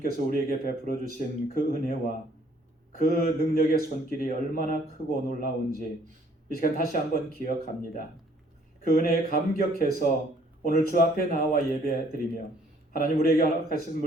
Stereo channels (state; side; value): normal; both; correlation 0.62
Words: 우리에게 베풀어 주신 그 은혜와 그 능력의 손길이 얼마나 크고 놀라운지 이 시간 다시 한번 기억합니다. 그 은혜에 감격해서 오늘 주 앞에 나와 예배드리며 하나님 우리에게 허락하신